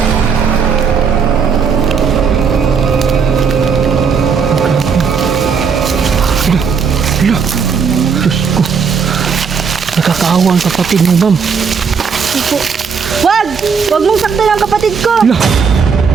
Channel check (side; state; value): left; quieter; 6.1 dB